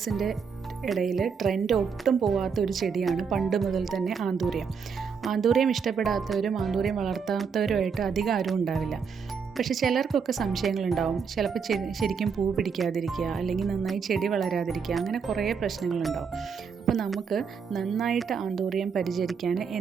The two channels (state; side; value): quieter; left; 6.1 dB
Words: ഇടയിൽ ട്രെൻഡ് ഒട്ടും പോവാത്ത ഒരു ചെടിയാണ് പണ്ട് മുതൽ തന്നെ ആന്തൂറിയം. ആന്തൂറിയം ഇഷ്ടപ്പെടാത്തവരും ആന്തൂറിയം വളർത്താത്തവരുമായിട്ട് അധികം ആരും ഉണ്ടാവില്ല. പക്ഷേ ചിലർക്കൊക്കെ സംശയങ്ങളുണ്ടാവും. ചിലപ്പോൾ ശരിക്കും പൂ പിടിക്കാതിരിക്കുക, അല്ലെങ്കിൽ നന്നായി ചെടി വളരാതിരിക്കുക, അങ്ങനെ കുറേ പ്രശ്നങ്ങളുണ്ടാവും. അപ്പോൾ നമുക്ക് നന്നായിട്ട് ആന്തൂറിയം പരിചരിക്കാൻ